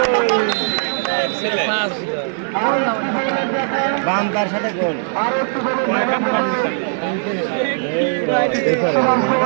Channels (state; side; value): silent; left; digital silence